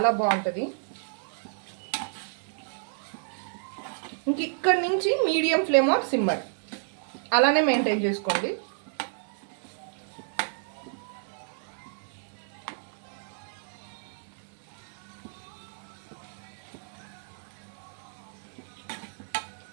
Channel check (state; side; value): silent; left; 58 dB below the other